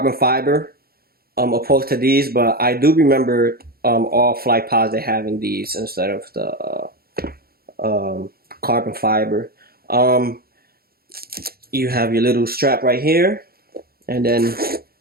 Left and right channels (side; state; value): left; late; 0.44 ms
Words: fiber opposed to these, but I do remember all Flightposite having these instead of the carbon fiber. You have your little strap right here, and then